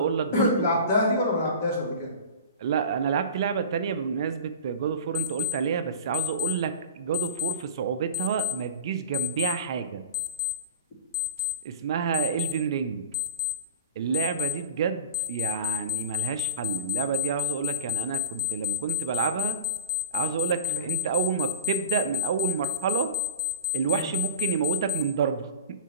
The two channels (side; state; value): both; inverted; correlation -0.37